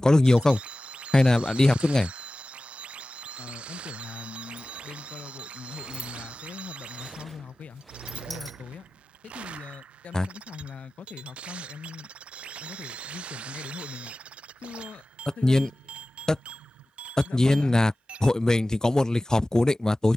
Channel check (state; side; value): normal; both; correlation 0.96